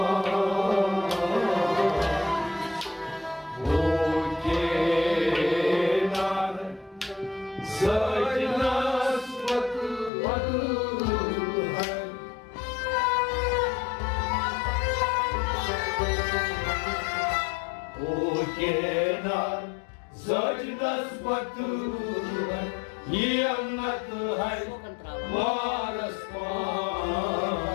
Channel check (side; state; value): right; drops out; at 10.1 s